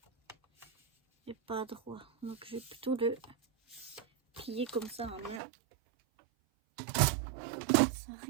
est pas droit. Donc je vais plutôt le plier comme ça en main. Ça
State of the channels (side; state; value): left; drops out; at 5.4 s